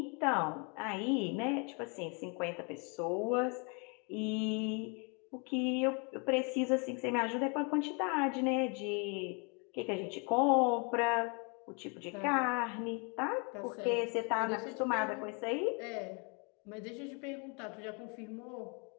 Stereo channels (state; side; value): quieter; right; 34.5 dB